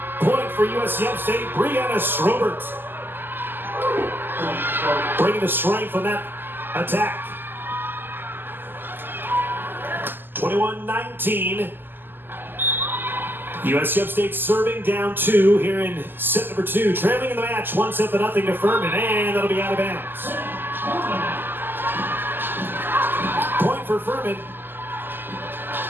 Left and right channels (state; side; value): late; left; 0.094 ms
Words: point for USC Upstate. Brianna Schroeder bringing the strength on that attack. 21-19. USC Upstate serving down 2 here in set number 2. Trailing in the match, 1-0 to Furman, and that'll be out of bounds. Point for Furman.